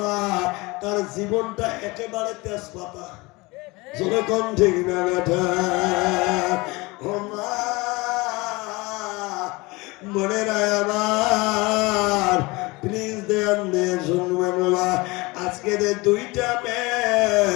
তার জীবনটা একেবারে তেজপাতা। যেরকম ঠিক না বেটা? ও মা, মনে রায় আমার, প্লিজ দেন দিয়ে শুনবেন। আজকে যে দুইটা মেয়ে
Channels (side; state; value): right; quieter; 23.9 dB